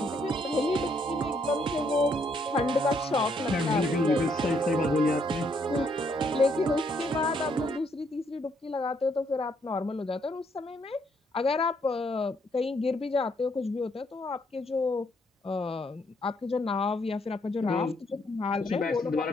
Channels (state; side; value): normal; both; correlation 0.71